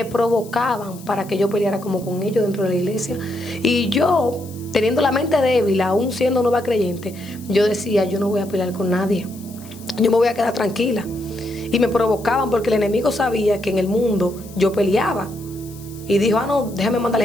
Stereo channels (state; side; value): noise; left; hiss, 21 dB below the sound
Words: provocaban para que yo peleara como con ellos dentro de la iglesia. Y yo, teniendo la mente débil, aún siendo nueva creyente, yo decía, yo no voy a pelear con nadie. Yo me voy a quedar tranquila. Y me provocaban porque el enemigo sabía que en el mundo yo peleaba. Y dijo, no, déjame mandar a la